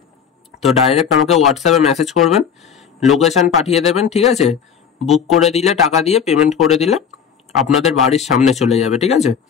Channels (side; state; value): right; quieter; 7.3 dB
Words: তো ডাইরেক্ট আমাকে হোয়াটসঅ্যাপে মেসেজ করবেন, লোকেশন পাঠিয়ে দেবেন, ঠিক আছে। বুক করে দিলে, টাকা দিয়ে পেমেন্ট করে দিলে আপনাদের বাড়ির সামনে চলে যাবে, ঠিক আছে।